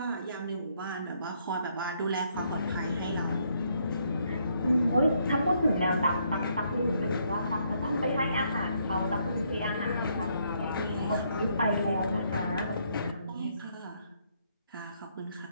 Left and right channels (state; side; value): inverted; both; correlation -0.72